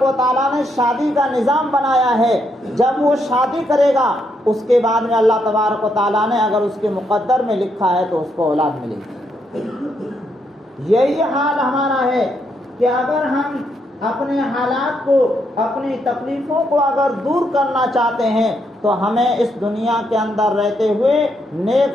و تعالیٰ نے شادی کا نظام بنایا ہے، جب وہ شادی کرے گا اس کے بعد میں اللہ تبارک و تعالیٰ نے اگر اس کے مقدر میں لکھا ہے تو اس کو اولاد ملے گی۔ یہی حال ہمارا ہے کہ اگر ہم اپنے حالات کو، اپنی تکلیفوں کو اگر دور کرنا چاہتے ہیں تو ہمیں اس دنیا کے اندر رہتے ہوئے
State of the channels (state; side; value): normal; both; correlation 0.77